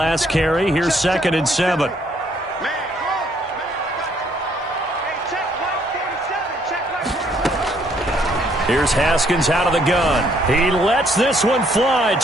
carry. Here's 2nd and 7. Here's Haskins out of the gun. He lets this one fly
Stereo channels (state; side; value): normal; both; correlation 0.67